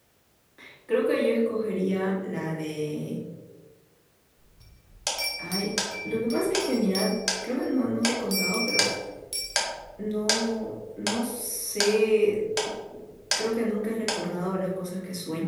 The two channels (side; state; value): both; identical; correlation 1.00